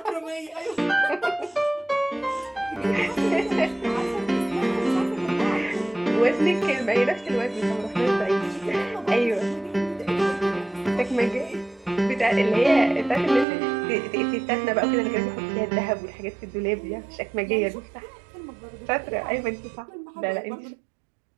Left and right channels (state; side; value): drops out; left; at 13.5 s